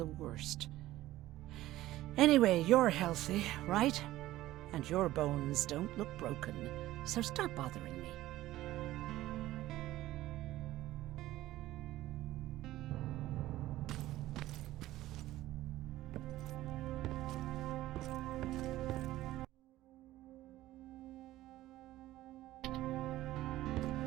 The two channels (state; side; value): quieter; left; 15.6 dB